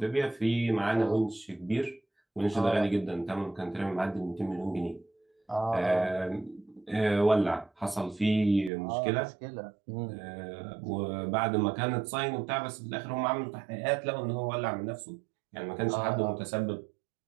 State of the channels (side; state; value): left; drops out; at 8.7 s